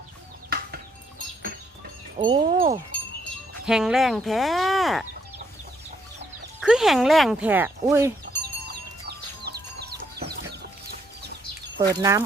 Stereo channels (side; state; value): both; normal; correlation 0.71